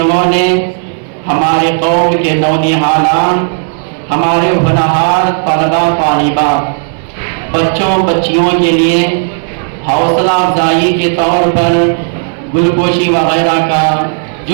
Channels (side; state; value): left; silent; digital silence